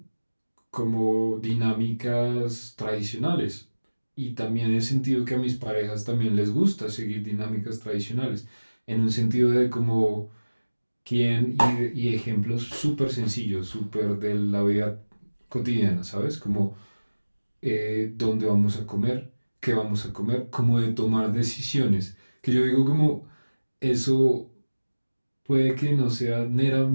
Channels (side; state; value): both; inverted; correlation -1.00